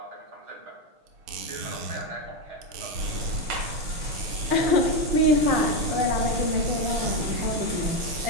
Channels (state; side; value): late; left; 6.3 ms